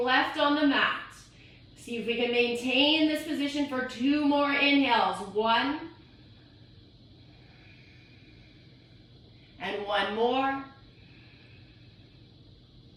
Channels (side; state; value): both; identical; correlation 1.00